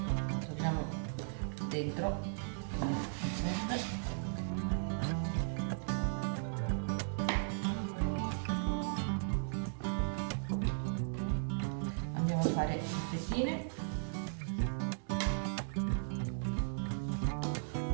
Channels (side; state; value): left; silent; digital silence